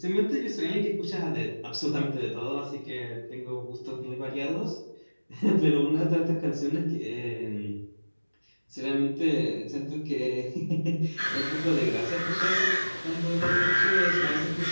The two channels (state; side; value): inverted; both; correlation -1.00